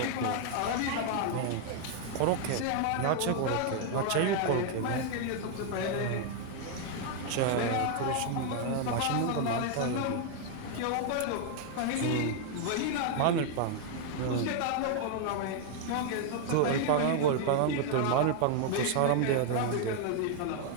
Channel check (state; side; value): different; both; correlation 0.00